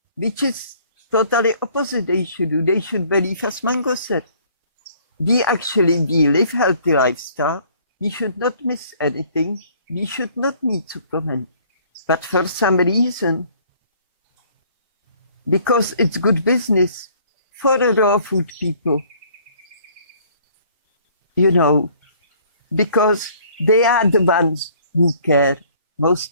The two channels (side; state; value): both; inverted; correlation -0.58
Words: which is totally opposite they should do. They should believe, as Mango said, we live healthy lifestyle. We should not miss anything. We should not need supplement. But for some reason, because it's good business for the raw food people, you know, because they are the ones who care.